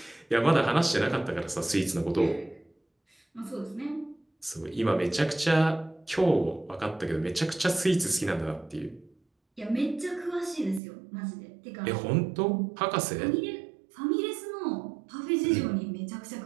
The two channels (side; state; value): left; drops out; at 10.8 s